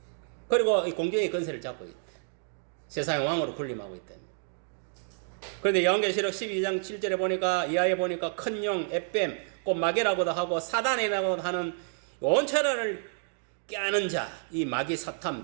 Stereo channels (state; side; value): silent; left; digital silence